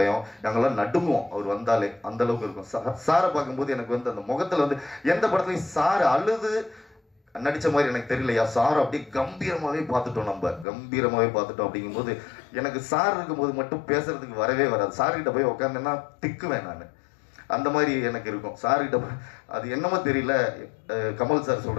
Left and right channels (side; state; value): right; drops out; at 10.7 s